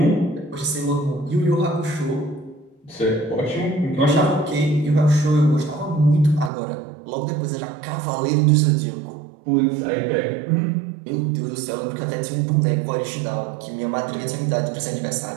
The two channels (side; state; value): left; drops out; at 6.5 s